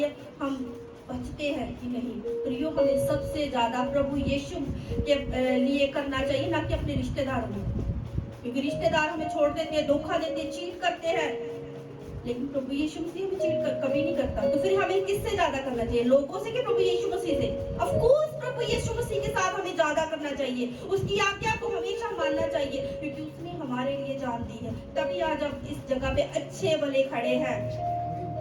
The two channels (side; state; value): both; identical; correlation 1.00